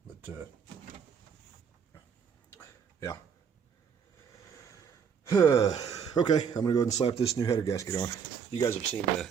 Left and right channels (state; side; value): quieter; left; 6.9 dB